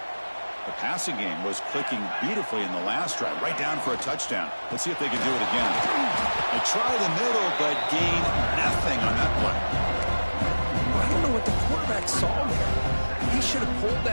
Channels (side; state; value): both; inverted; correlation -1.00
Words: The passing game was clicking beautifully in the last drive, right down for a touchdown. Let's see if they can do it again. They try the middle, but gain nothing on that play. I don't know what the quarterback saw there. He should have pulled